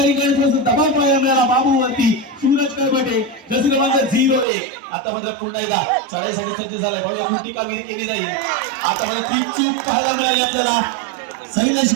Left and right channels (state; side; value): drops out; left; at 4.5 s